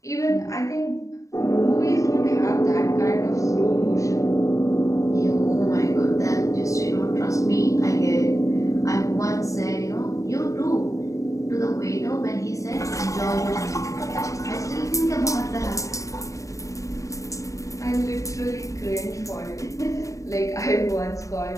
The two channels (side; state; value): right; late; 0.16 ms